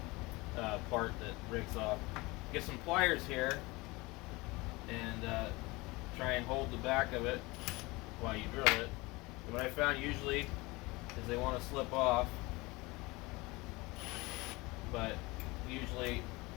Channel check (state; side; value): quieter; right; 23.2 dB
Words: part that breaks off. Get some pliers here and try and hold the back of it while you drill it. And what I found usually is they want to slip off, but usually